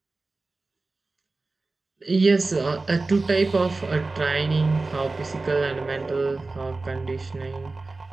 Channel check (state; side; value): quieter; left; 3.5 dB